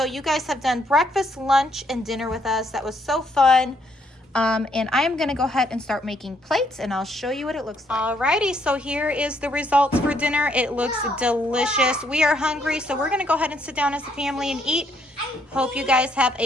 you guys have done breakfast, lunch, and dinner with us. That was so fun. And I am gonna go ahead and start making plates, and I'll show you what it looks like. Alrighty, so here is the results for dinner. It looks delicious. We are hungry, so we're gonna go ahead and sit down as a family and eat. Hope you guys have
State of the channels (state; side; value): normal; both; correlation 0.71